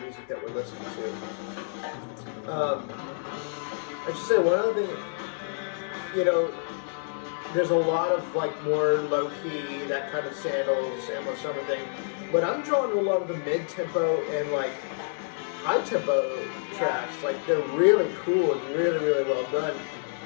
that we're listening to. I should say one other thing, there's a lot of like more low-key, that kind of sandals, endless summer thing, but I'm drawn to a lot of the mid-tempo and like high-tempo tracks. Like they're really cool and really, really well done.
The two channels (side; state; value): right; silent; digital silence